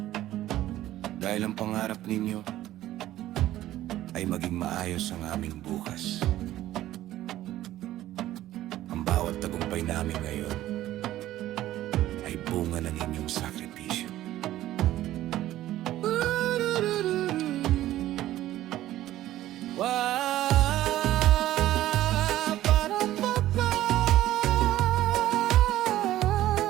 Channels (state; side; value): quieter; left; 14.2 dB